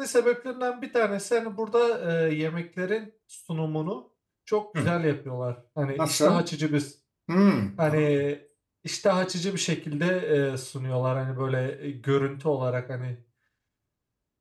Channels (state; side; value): identical; both; correlation 1.00